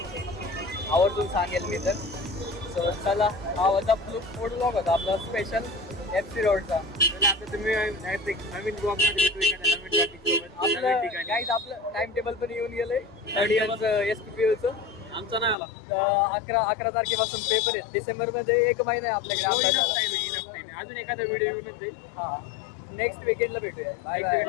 आवर्जून सांगेल मी तर. सो चला हा होता फूड ब्लॉग होता आपला स्पेशल FC रोडचा. आता तुम्ही नवीन ब्लॉग मध्ये भेटू एखाद्या नवीन टॉपिक सोबत आपलं नवीन ठिकाणी. गाईज आपलं टाइम टेबल पण येऊन गेलंय 3rd इयरचं SPPUचं. आमचा नाही आला 11 तारखेपासून पेपर आहेत. डिसेंबरमध्ये 1 महिना आहे आपल्याकडे अभ्यासाला. अजून एखादा व्हिडिओ येऊनच जाईल. हा नेक्स्ट वीकेंडला भेटूया. Bye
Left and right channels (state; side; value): drops out; right; at 15.6 s